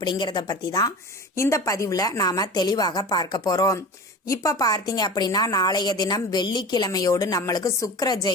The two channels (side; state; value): both; normal; correlation 0.33